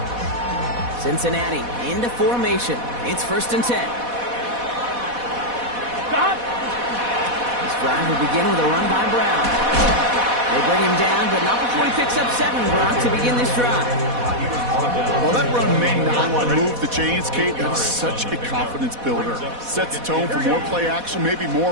Cincinnati into formation. It's 1st and 10. This drive will begin with a run by Brown. They bring him down, but not before he picks up 7, Brock, to begin this drive. While that run may not move the chains, Kate, that's such a confidence builder. Sets the tone for more play action, maybe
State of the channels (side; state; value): left; late; 4.1 ms